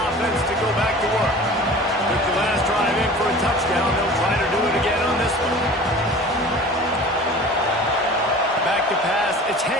to go back to work. With the last drive in for a touchdown, they'll try to do it again on this one. Back to pass, it's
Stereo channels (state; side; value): normal; both; correlation 0.41